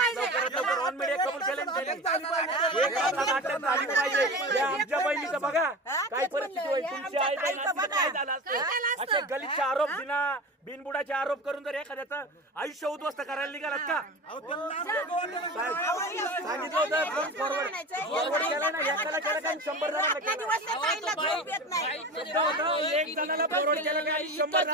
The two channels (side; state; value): both; normal; correlation 0.30